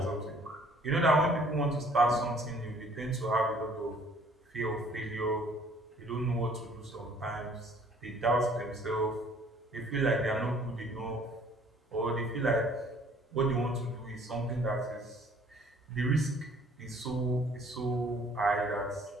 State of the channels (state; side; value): normal; both; correlation 0.57